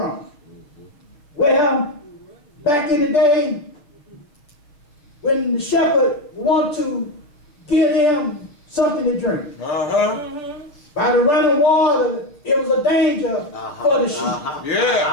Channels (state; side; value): late; right; 6.7 ms